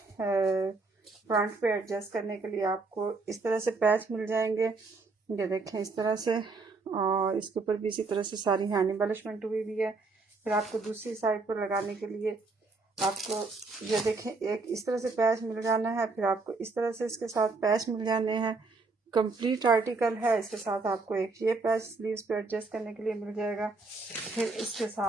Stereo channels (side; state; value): left; quieter; 3.9 dB